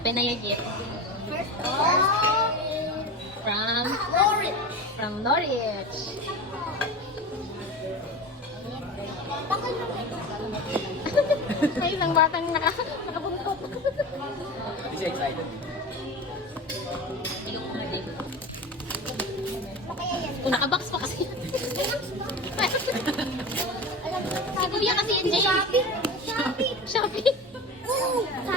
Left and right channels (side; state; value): both; normal; correlation 0.29